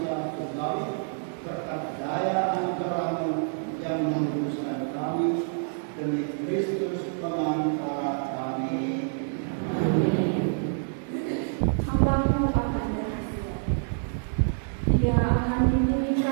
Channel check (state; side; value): silent; left; digital silence